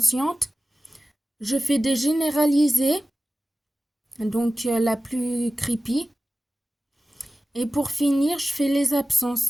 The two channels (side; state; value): both; normal; correlation 0.95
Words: Je fais des généralisées, la plus creepy. Et pour finir, je fais les